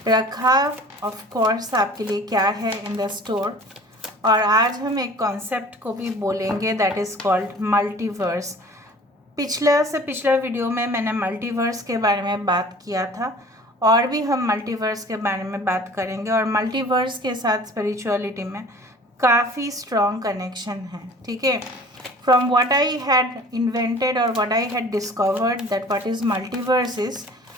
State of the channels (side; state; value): both; normal; correlation 0.46